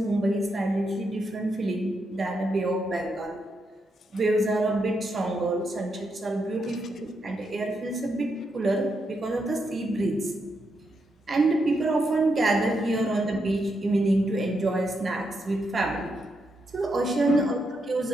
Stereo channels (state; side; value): normal; both; correlation 0.82